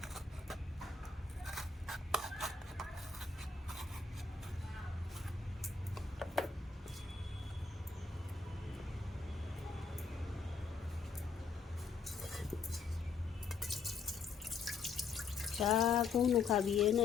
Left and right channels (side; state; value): right; quieter; 4.8 dB